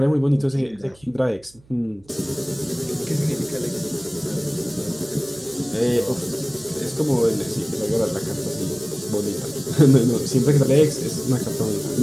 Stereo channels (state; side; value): noise; right; hum, 29 dB below the sound